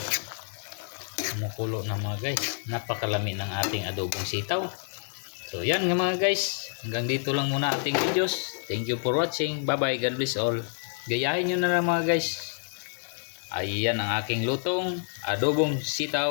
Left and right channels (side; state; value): right; silent; digital silence